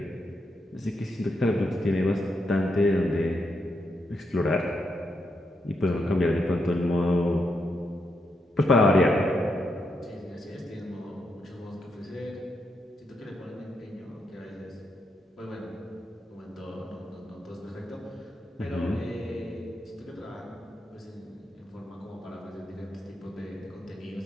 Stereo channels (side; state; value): both; normal; correlation 0.81